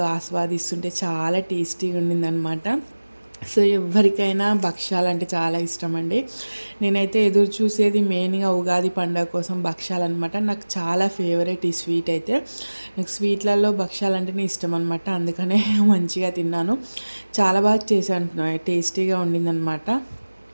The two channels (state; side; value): inverted; both; correlation -1.00